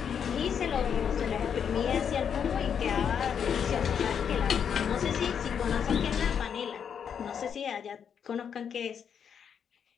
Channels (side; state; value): right; quieter; 7.6 dB